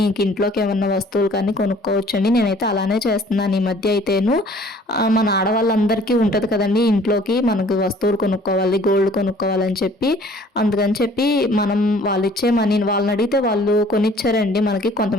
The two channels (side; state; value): both; normal; correlation 0.54